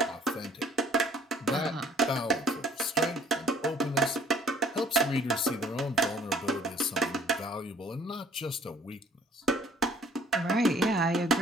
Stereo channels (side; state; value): both; normal; correlation 0.56